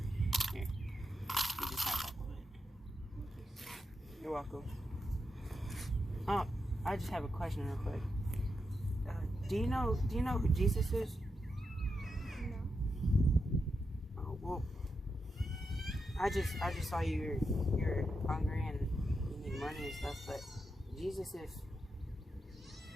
Here. You just have all of it. You're welcome. Oh, I just have a question real quick. Do you know who Jesus is? No. Oh, well, I just saw you're hungry and you need money and stuff, but Jesus is,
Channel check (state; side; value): normal; both; correlation 0.86